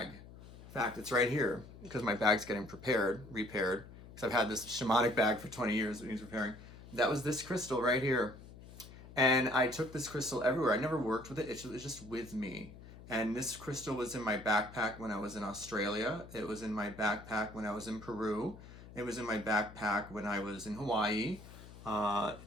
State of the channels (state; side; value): noise; left; hum, 17 dB below the sound